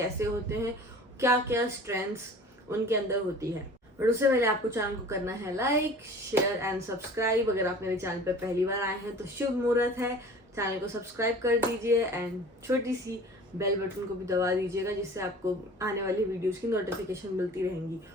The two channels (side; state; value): both; normal; correlation 0.43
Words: होते हैं, क्या क्या स्ट्रेंथ्स उनके अंदर होती है। बट उससे पहले आपको चैनल को करना है लाइक, शेयर एंड सब्सक्राइब। अगर आप मेरे चैनल पर पहली बार आए हैं तो शुभ मुहूर्त है, चैनल को सब्सक्राइब कर दीजिए एंड छोटी सी बेल बटन को भी दबा दीजिएगा जिससे आपको आने वाली वीडियोस की नोटिफिकेशन मिलती रहेंगी।